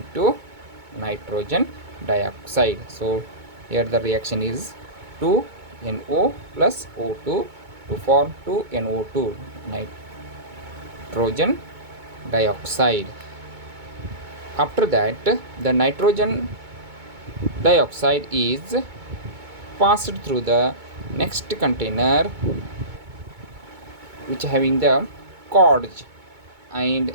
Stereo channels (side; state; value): left; late; 2.2 ms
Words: nitrogen dioxide. So here the reaction is 2NO plus O2 to form 2NO2 nitrogen dioxide. After that, the nitrogen dioxide is passed through the next container which having the cords, and